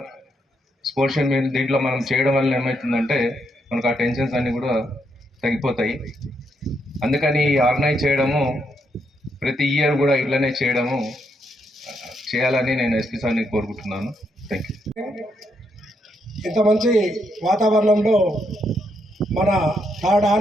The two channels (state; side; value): normal; both; correlation 0.78